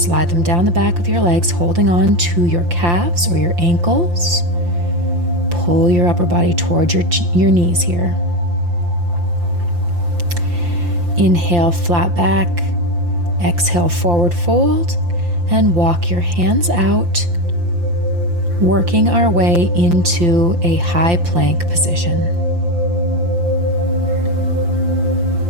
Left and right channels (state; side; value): late; left; 5.8 ms